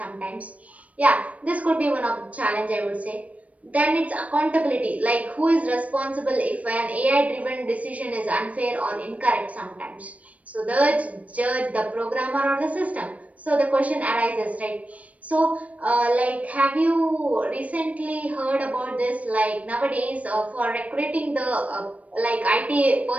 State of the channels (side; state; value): left; late; 0.067 ms